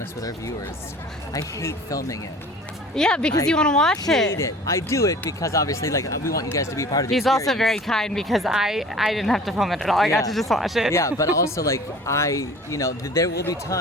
with our viewers. I hate filming it. Yeah, because you want to watch I hate it. I do it because obviously, like, we want you guys to be part of the He's experience. also very kind because I didn't have to film it at all. I got to just watch it. Yeah, but also, like, there will be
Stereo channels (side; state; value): both; normal; correlation 0.44